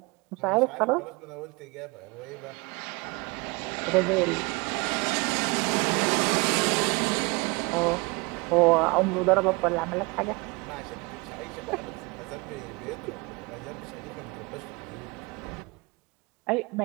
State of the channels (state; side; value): quieter; left; 26.7 dB